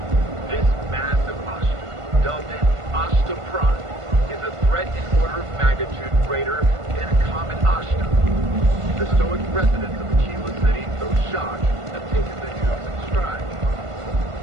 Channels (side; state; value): left; late; 1.5 ms